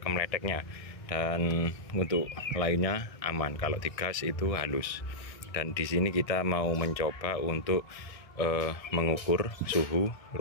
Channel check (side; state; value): right; late; 1.6 ms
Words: dan untuk lainnya aman. Kalau di gas itu halus. Dan di sini kita mau mencoba untuk mengukur suhu